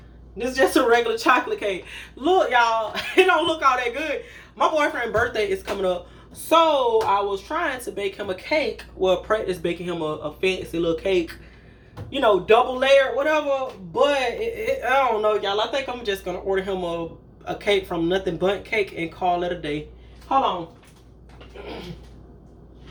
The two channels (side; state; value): both; identical; correlation 1.00